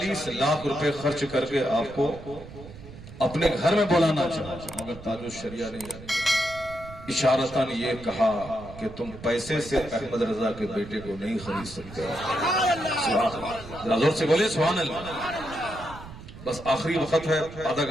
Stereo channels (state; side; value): noise; right; rumble, 15 dB below the sound